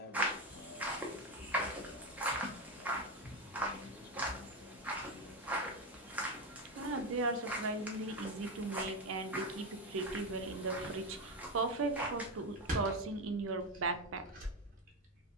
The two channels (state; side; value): normal; both; correlation 0.13